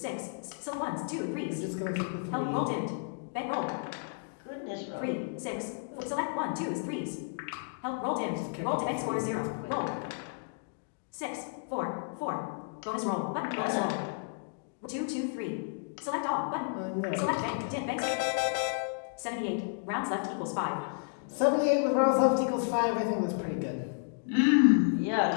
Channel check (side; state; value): right; silent; digital silence